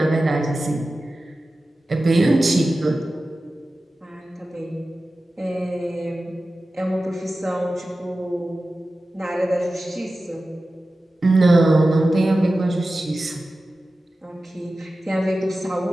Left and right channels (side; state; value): both; normal; correlation 0.94